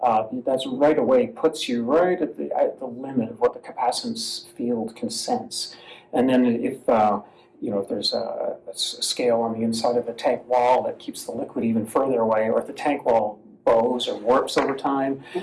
that's right away puts you right at the limit of what the capacitance field can sense. And then if there's a scale on the inside of the tank wall that keeps the liquid even further away, or if the tank wall bows or warps over time,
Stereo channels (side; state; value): both; identical; correlation 1.00